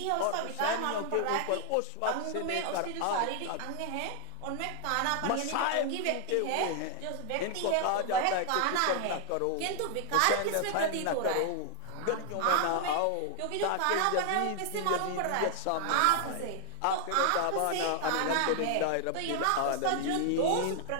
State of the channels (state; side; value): different; both; correlation 0.00